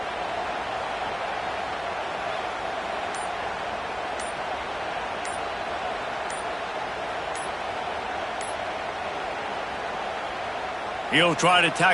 He'll try to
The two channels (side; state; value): both; identical; correlation 1.00